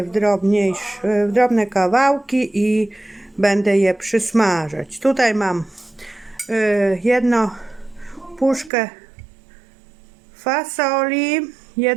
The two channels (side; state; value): left; drops out; at 8.7 s